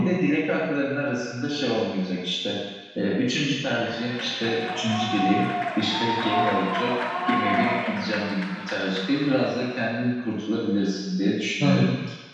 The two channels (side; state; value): both; identical; correlation 1.00